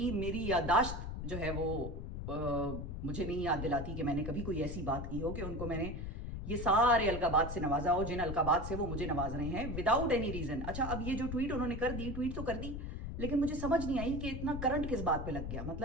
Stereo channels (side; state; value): left; noise; rumble, 5 dB below the sound